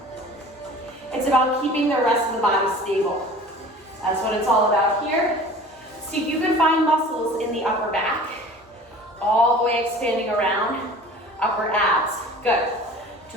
It's about keeping the rest of the body stable. That's what it's all about here. See if you can find muscles in the upper back, all the way expanding around, upper abs. Good.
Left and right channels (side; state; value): both; normal; correlation 0.43